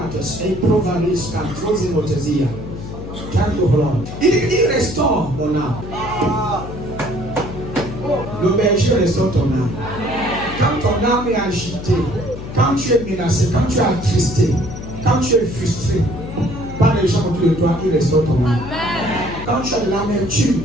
et Provalisca, Trozimotesia. Il restaure mon âme. Le berger restaure ton âme. Quand ton âme est agitée, quand tu es menacé, quand tu es attristé, quand tu es frustré par les gens autour de toi, il restaure ton âme. Quand tu as de l'amertume,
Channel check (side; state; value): left; noise; hum, 10 dB below the sound